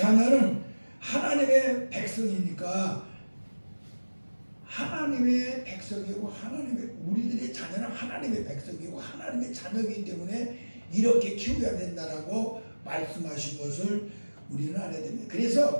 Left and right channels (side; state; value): both; inverted; correlation -1.00